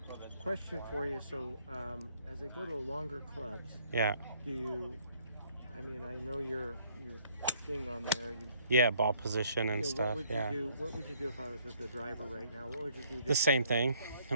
question for you. So, as I go to longer clubs, yeah. Do you? I mean, I know your thing on there. Ball position and stuff. What would you do if I was with the driver right now? What would you do? The same thing. I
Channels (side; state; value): both; inverted; correlation -0.65